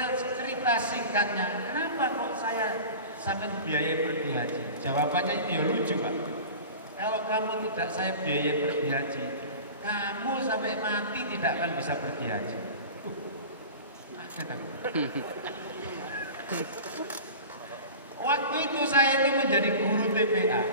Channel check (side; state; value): both; inverted; correlation -0.36